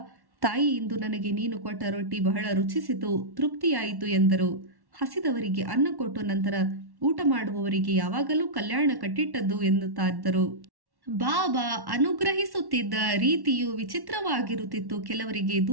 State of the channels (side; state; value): left; late; 1.1 ms